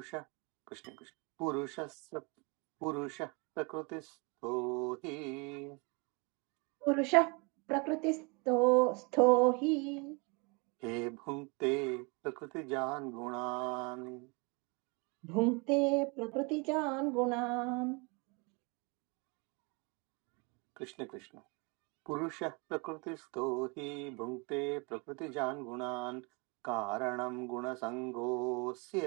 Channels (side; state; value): left; quieter; 30.5 dB